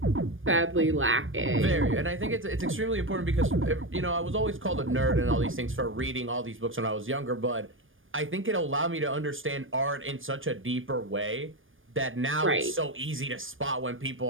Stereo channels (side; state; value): left; late; 0.58 ms